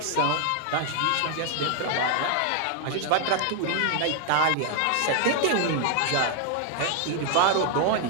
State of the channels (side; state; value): both; different; correlation 0.00